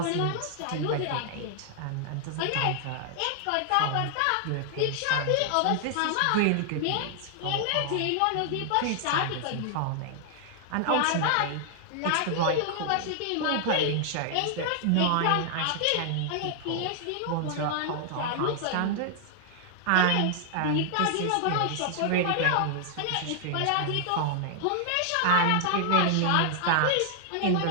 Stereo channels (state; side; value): different; both; correlation 0.00